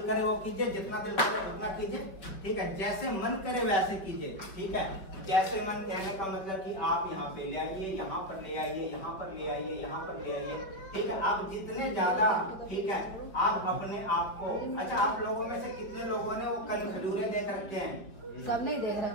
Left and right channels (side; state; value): right; late; 5.0 ms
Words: वो कीजिए, जितना दिल करे उतना कीजिए, ठीक है, जैसे मन करे वैसे कीजिए, ठीक है। जैसे मन कहने का मतलब कि आप यहाँ पे ले आइए, यहाँ पर ले आइए, यहाँ पर ले आइए, यहाँ पर ले आइए, ठीक है। आप जितने ज्यादा, ठीक है, आप अपने आप को, अच्छा, आप लोगों में से कितने लोगों ने वो कन खजूरे देख रखे हैं? सब नहीं देख